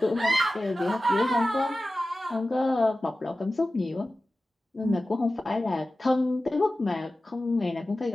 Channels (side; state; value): both; normal; correlation 0.95